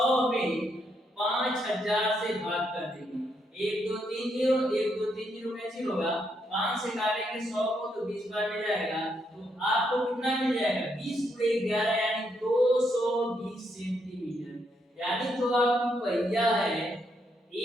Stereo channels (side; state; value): both; normal; correlation 0.77